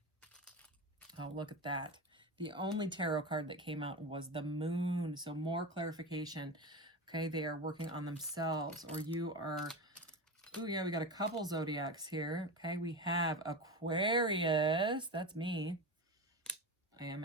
Oh, look at that. The only tarot card that came out was the moon. So more clarification. Okay, they are working on themselves, or you are... Oh, yeah, we got a couple zodiacs here. Okay, we have Aquarius. That's me. I am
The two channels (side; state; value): both; normal; correlation 0.23